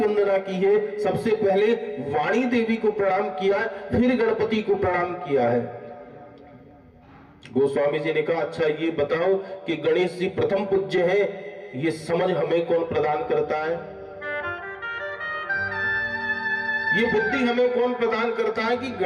की है। सबसे पहले वाणी देवी को प्रणाम किया, फिर गणपति को प्रणाम किया है। गोस्वामी जी ने कहा अच्छा ये बताओ कि गणेश जी प्रथम पूज्य है, ये समझ हमें कौन प्रदान करता है? ये बुद्धि हमें कौन प्रदान करता है कि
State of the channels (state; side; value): identical; both; correlation 1.00